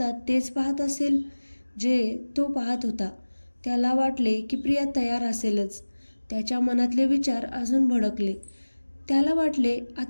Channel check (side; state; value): both; inverted; correlation -1.00